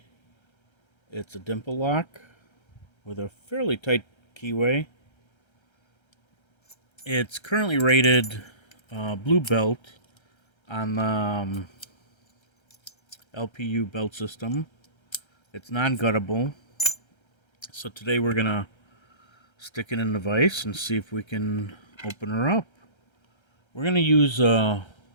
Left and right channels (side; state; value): right; late; 1.3 ms